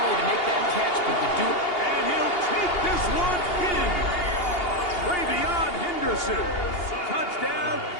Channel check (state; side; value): late; right; 2.8 ms